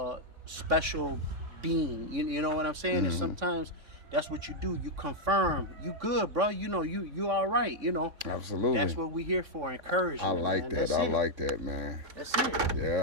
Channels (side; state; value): left; late; 3.6 ms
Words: special being. You know what I'm saying? And sometimes that's what you do. You confirm, you good, bro. You know, you all right. You know. Absolutely. That's what we're here for, encouragement. I like that. I like that, man. That's it.